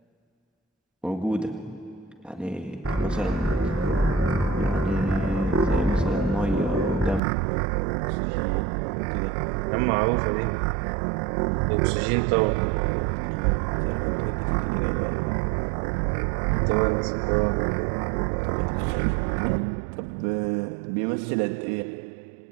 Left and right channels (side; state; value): left; drops out; at 7.2 s